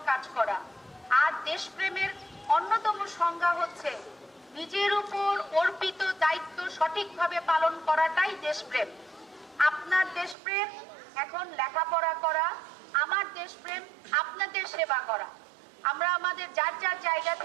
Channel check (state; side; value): drops out; left; at 10.4 s